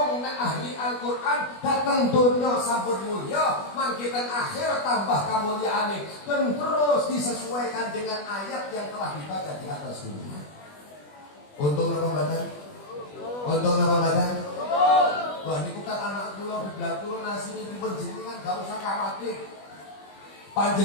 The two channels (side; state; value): right; late; 20 ms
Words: nek ahli Al-Qur'an dateng donya sampun mulya, mangkitan akhir tambah kamulyaane dan terus disesuaikan dengan ayat yang telah dibaca di atas dunia. Untung napa mboten? Untung napa mboten? Wah niku kan anak kula biblat kula nasine dipun jenengan gak usah khawatir.